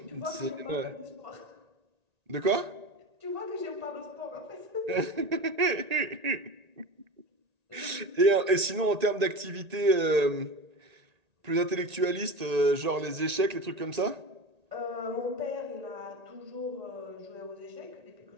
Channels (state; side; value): late; left; 1.8 ms